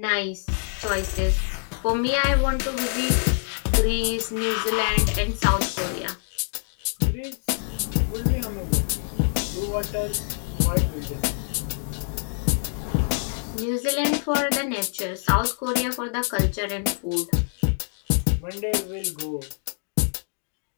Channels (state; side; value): silent; right; digital silence